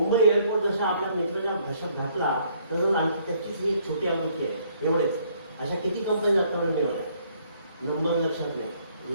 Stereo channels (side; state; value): both; inverted; correlation -0.65